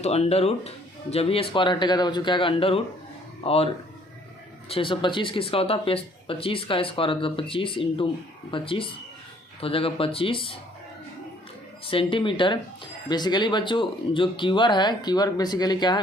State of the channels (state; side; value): normal; both; correlation 0.60